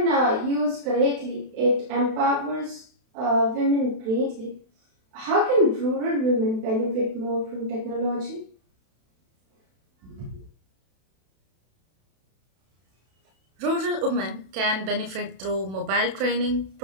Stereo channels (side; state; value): left; late; 31 ms